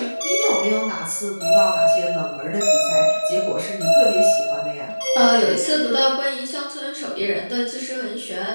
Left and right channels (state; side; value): inverted; both; correlation -1.00